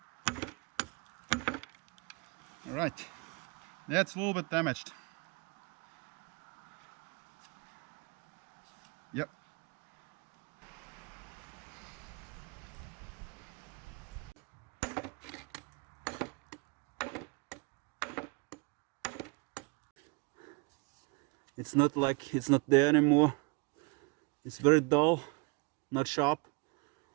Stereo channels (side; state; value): left; quieter; 29.4 dB